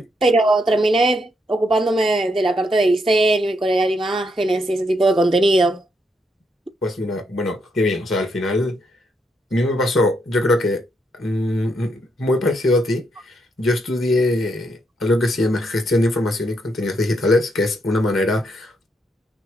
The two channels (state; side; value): normal; both; correlation 0.77